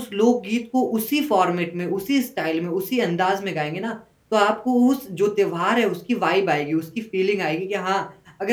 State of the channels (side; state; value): both; identical; correlation 1.00